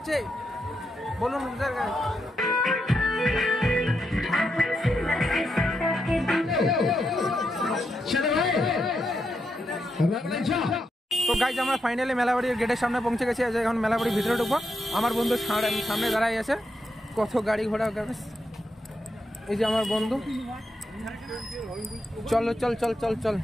বলুন তো গাইস আমরা ফাইনালি মেলাবাড়ির গেটের সামনে পৌঁছে গেছি। এখন মেলাবাড়ির ভিতরে ঢুকবো। আমার বন্ধু সামনে দাঁড়াই আছে, কত গাড়ি ঘোড়া। এই যে আমার বন্ধু, চলো চল চল চল চল।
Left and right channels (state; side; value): normal; both; correlation 0.83